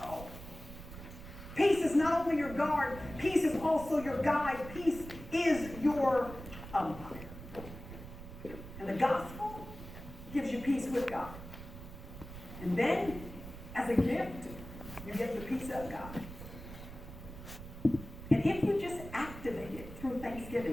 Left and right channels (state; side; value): noise; right; rumble, 13 dB below the sound